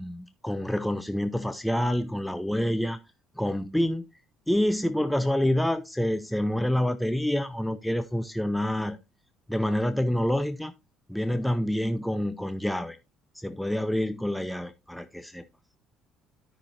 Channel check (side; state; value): both; normal; correlation 0.98